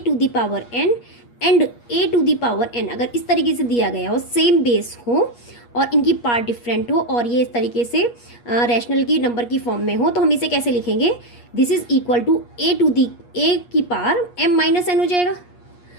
एंड a⁴n अगर इस तरीके से दिया गया हो, सेम बेस हो और इनकी पार्ट डिफरेंट हो और ये इस तरीके से रैशनल की नंबर की फॉर्म में हो, तो हम इसे कैसे लिखेंगे, this is equal to a की पावर m-n हो जाएगा,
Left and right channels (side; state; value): right; late; 8.4 ms